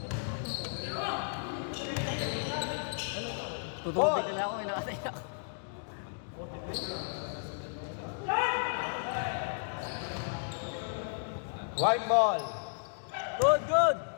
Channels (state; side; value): silent; right; digital silence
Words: Tutulog ka na ako, may nakasaya ako. White ball. Good, good.